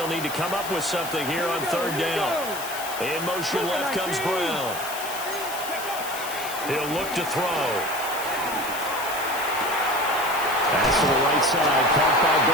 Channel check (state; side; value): noise; left; hiss, 10 dB below the sound